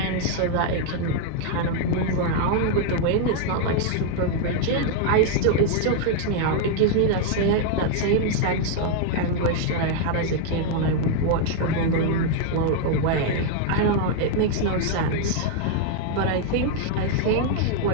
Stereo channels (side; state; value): both; different; correlation 0.00